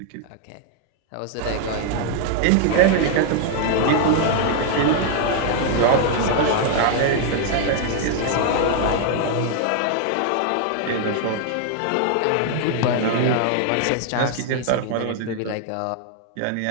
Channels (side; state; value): both; different; correlation 0.00